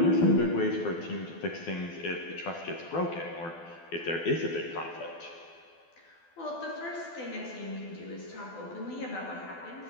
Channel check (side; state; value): right; late; 12 ms